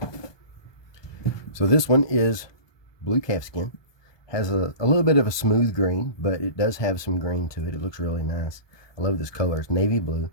So this one is blue calfskin. Has a little bit of a smooth grain, but it does have some grain to it. It looks really nice. I love this color. It's navy blue,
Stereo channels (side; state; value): right; late; 1.2 ms